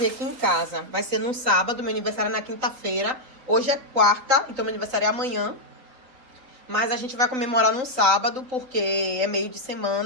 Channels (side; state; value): left; late; 3.9 ms